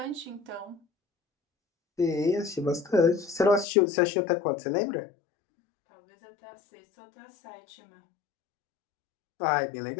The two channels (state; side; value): drops out; right; at 3.7 s